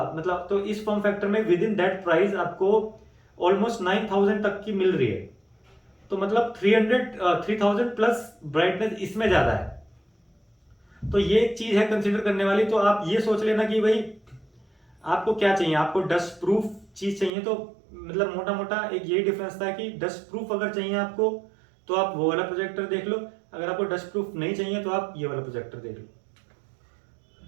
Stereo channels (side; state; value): left; drops out; at 17.3 s